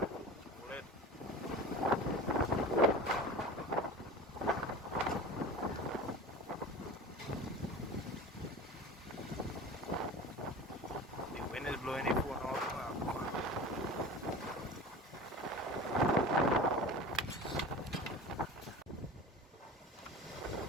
The wind is blowing the phone all over.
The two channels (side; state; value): both; normal; correlation 0.35